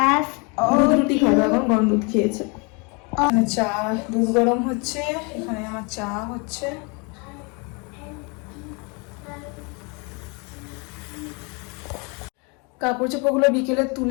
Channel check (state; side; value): quieter; right; 31.5 dB